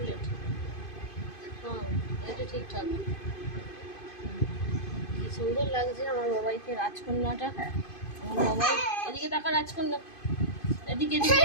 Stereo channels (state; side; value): late; right; 2.5 ms